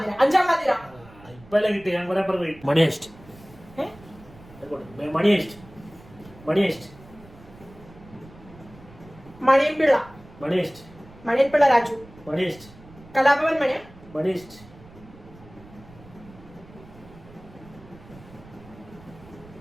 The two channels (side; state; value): right; noise; rumble, 21 dB below the sound